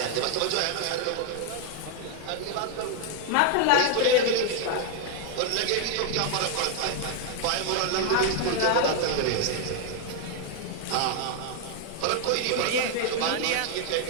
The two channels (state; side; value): different; both; correlation 0.00